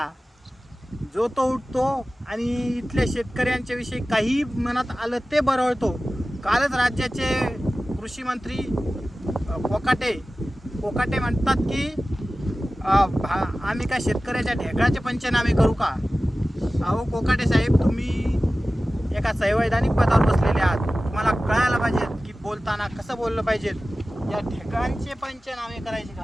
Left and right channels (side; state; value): both; normal; correlation 0.96